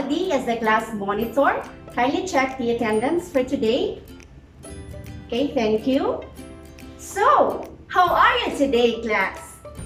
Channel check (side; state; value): both; identical; correlation 1.00